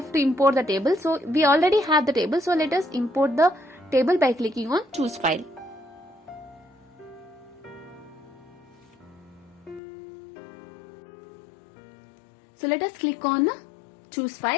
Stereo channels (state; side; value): drops out; right; at 9.8 s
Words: to import the table. So we already have the table, so let us import the table by clicking on choose file. So let us click on choose